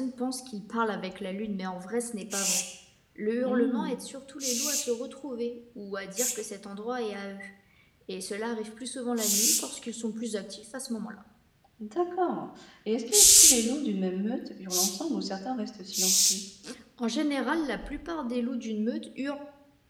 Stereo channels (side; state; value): both; identical; correlation 1.00